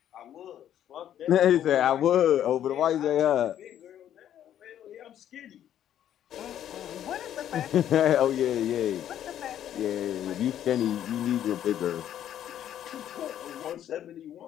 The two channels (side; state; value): right; quieter; 10.8 dB